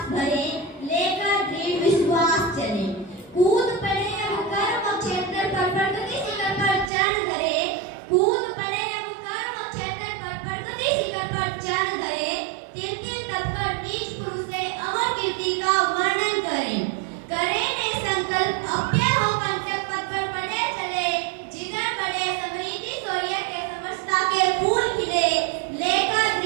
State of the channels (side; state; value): left; drops out; at 6.9 s